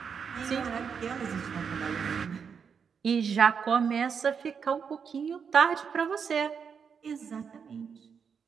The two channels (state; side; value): quieter; left; 6.5 dB